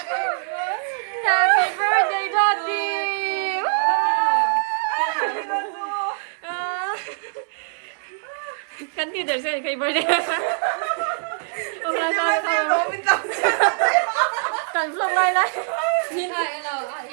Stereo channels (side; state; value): left; silent; 63 dB below the other